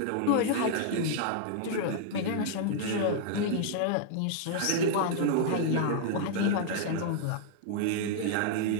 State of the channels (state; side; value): different; both; correlation -0.01